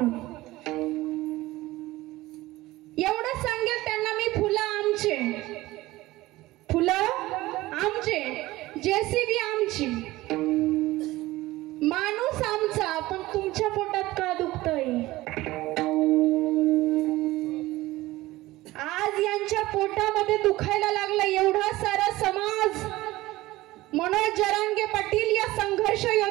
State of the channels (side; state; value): left; quieter; 18.1 dB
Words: एवढं सांगेल त्यांना मी, फुलं आमचे, फुलं आमचे, JCB आमची, माणूस आमचा, पण तुमच्या पोटात का दुखतंय? आज यांच्या पोटामध्ये दुखायला लागला एवढा सारा समाज. मनोज जरांगे पाटील या संघर्ष